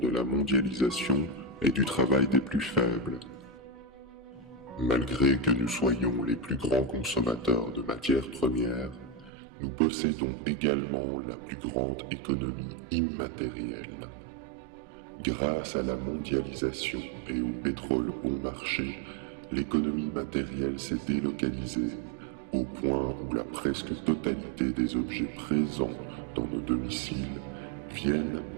la mondialisation et du travail des plus faibles. Malgré que nous soyons les plus grands consommateurs de matières premières, nous possédons également la plus grande économie immatérielle. Grâce à la mondialisation et au pétrole bon marché, l'économie matérielle s'est délocalisée au point où la presque totalité des objets présents dans nos domiciles viennent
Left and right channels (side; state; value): left; drops out; at 9.3 s